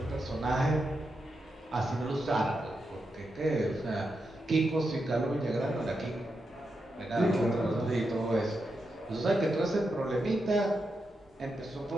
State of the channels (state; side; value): normal; both; correlation 0.86